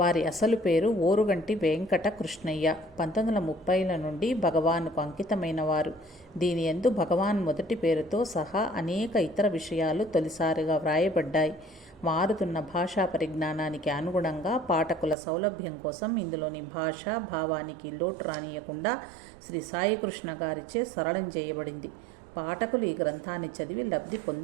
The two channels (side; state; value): left; drops out; at 15.2 s